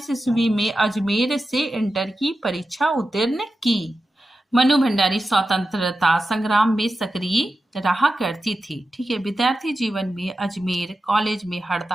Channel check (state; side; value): normal; both; correlation 0.92